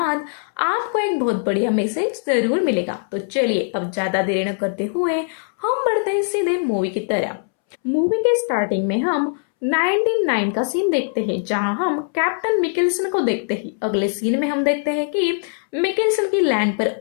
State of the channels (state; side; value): silent; right; 65 dB below the other